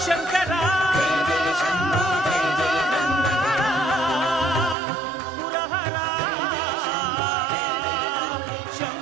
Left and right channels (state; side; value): drops out; left; at 4.8 s